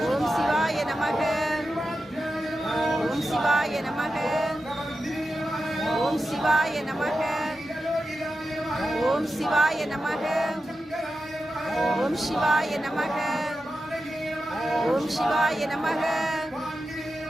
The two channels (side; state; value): both; normal; correlation 0.91